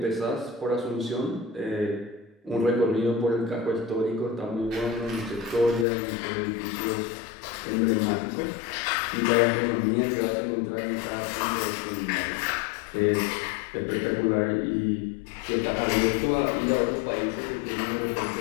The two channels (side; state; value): right; drops out; at 5.9 s